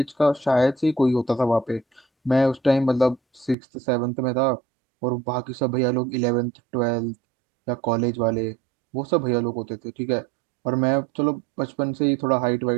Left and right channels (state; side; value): drops out; left; at 3.6 s